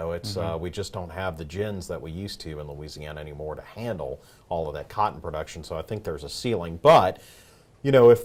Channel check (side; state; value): both; identical; correlation 1.00